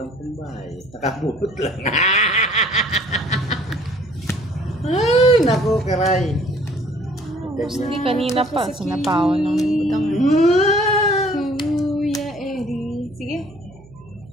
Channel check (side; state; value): right; noise; hum, 23 dB below the sound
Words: pambahay. Nakabulot lang. Ay, naku, Kiray. Boss D, kanina pa. Sinapawan ng Budang. Kuya Eddie. Sige.